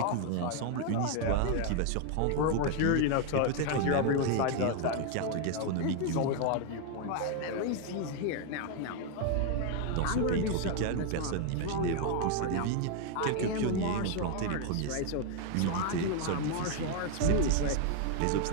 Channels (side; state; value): both; different; correlation 0.01